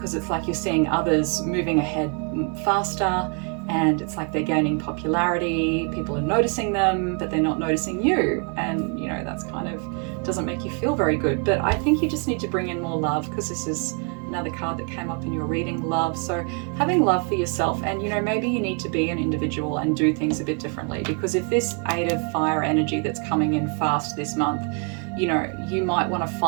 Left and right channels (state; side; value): quieter; left; 38.0 dB